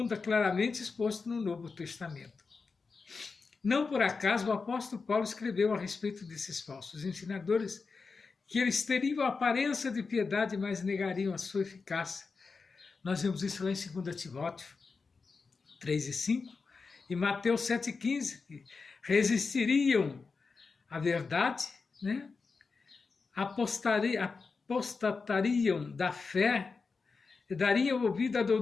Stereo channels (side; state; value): right; quieter; 4.6 dB